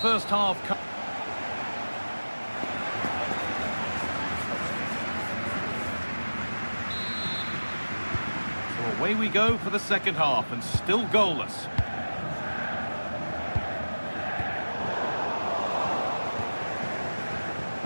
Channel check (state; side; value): inverted; both; correlation -1.00